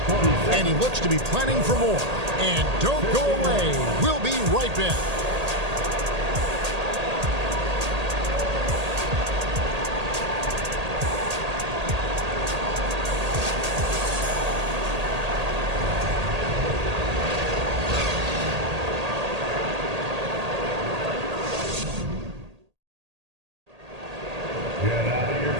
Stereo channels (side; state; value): left; late; 1.8 ms